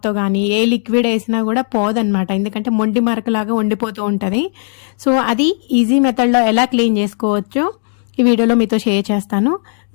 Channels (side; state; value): right; silent; 58 dB below the other